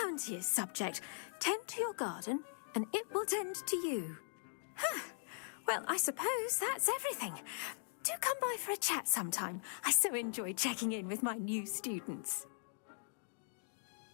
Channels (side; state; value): right; silent; digital silence